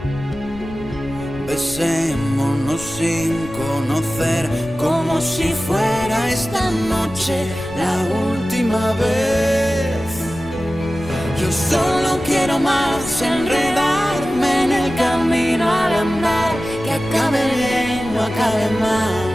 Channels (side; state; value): left; noise; rumble, 16 dB below the sound